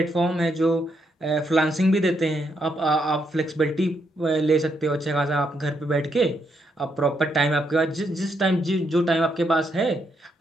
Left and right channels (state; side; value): normal; both; correlation 0.78